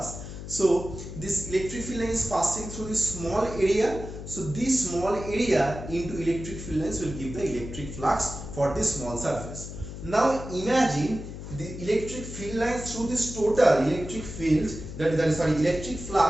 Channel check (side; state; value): left; noise; hum, 10 dB below the sound